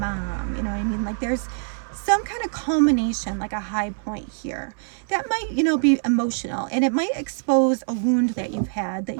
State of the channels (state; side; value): silent; left; digital silence